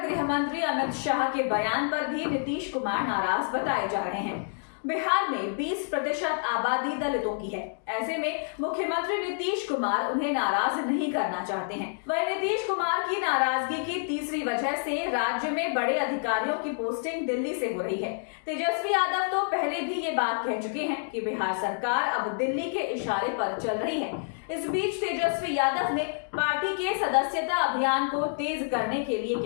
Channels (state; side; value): silent; right; digital silence